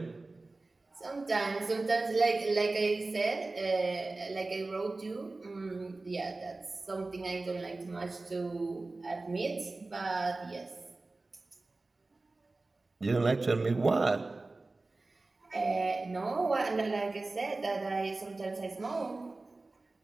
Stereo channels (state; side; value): quieter; left; 3.3 dB